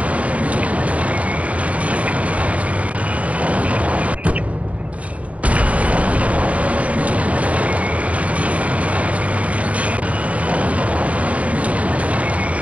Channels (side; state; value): left; late; 0.067 ms